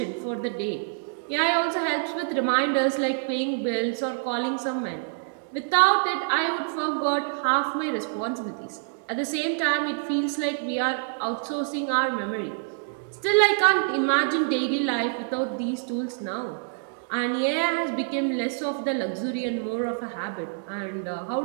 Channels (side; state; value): left; silent; digital silence